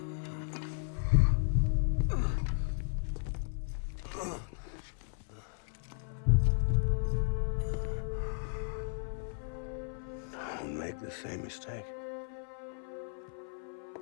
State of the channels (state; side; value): silent; right; 55 dB below the other